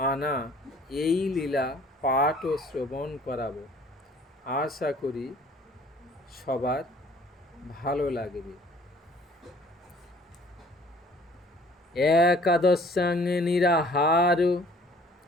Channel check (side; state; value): both; normal; correlation 0.55